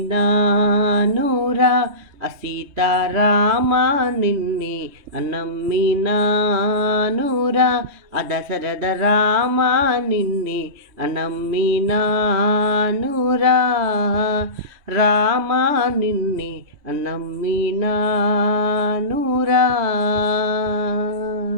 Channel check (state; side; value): late; left; 3.2 ms